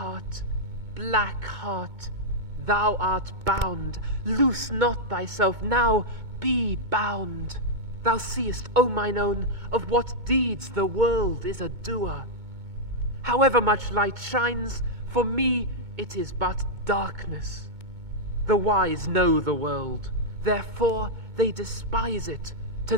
black heart, thou art bound. Loose not thyself now, be bound. Thou seest, O mine own, of what deeds the world is a doer. However much light shines, for me it is but darkness. The wise know the world, therefore they despise it. To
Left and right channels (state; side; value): late; left; 2.2 ms